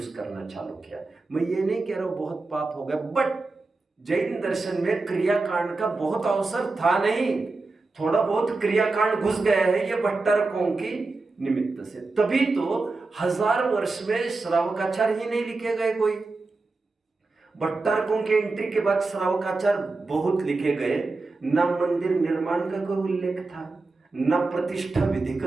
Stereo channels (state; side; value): quieter; left; 3.6 dB